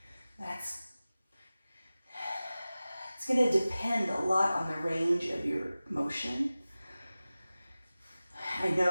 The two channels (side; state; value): both; inverted; correlation -0.96